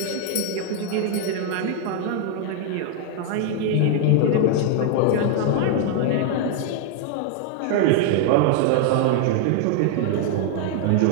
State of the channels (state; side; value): different; both; correlation 0.00